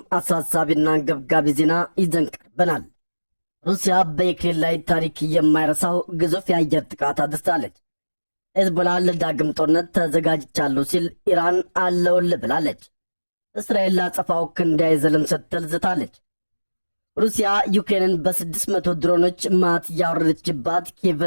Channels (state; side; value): inverted; both; correlation -1.00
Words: አሳሳቢና አንገብጋቢ ዜና ይዘን ቀርበናል። ሩሲያ በዩክሬን ላይ ታሪክ የማይረሳው ግዙፍ የአየር ጥቃት አድርሳለች። ሄዝቦላ ለዳግም ጦርነት ተዘጋጅቻለሁ ሲል ኢራን አለውልህ ብላለች። እስራኤል ላጸፋው ክንድ አይዘልም ስትል ዝታለች። ሩሲያ ዩክሬንን በ600 ድሮኖች ማት ያወረደችባት